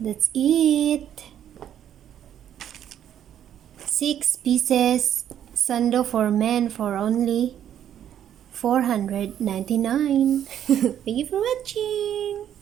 it. 6 pieces Sando For Men for only $499. Thank you for watching.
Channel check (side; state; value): left; quieter; 10.2 dB